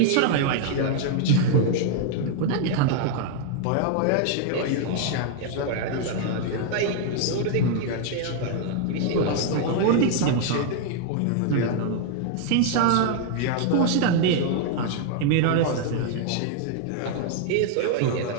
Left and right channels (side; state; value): both; different; correlation 0.00